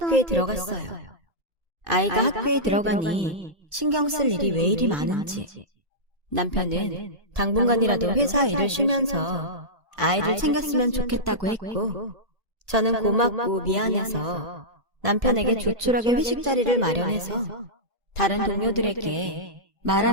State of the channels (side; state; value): left; late; 1.8 ms